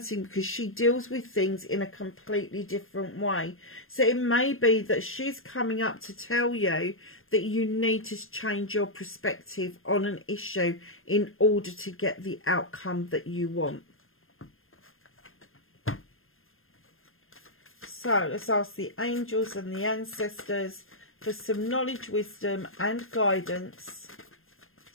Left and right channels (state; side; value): late; right; 0.60 ms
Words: because she deals with things in a completely different way. So it may be that she's coming up to tell you that you need to change your perspective on an issue in order to get the outcome that you want. So let's ask the angels and the ancestors for some knowledge, wisdom and guidance